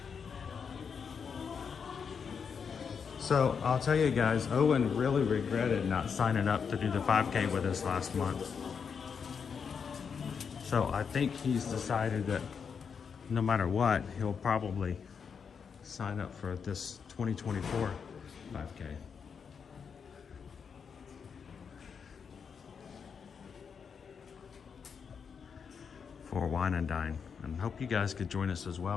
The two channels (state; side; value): quieter; right; 6.4 dB